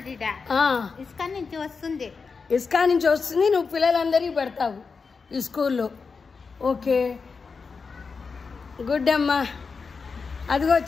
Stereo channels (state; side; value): quieter; right; 5.0 dB